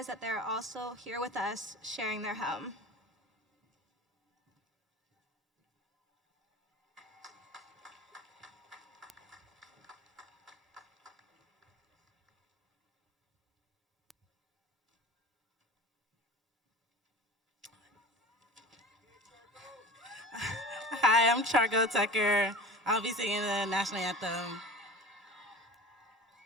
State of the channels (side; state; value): both; normal; correlation 0.37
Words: that they are also here with us sharing their home. Hi, I'm Chargo Tucker. I'll be singing the national anthem.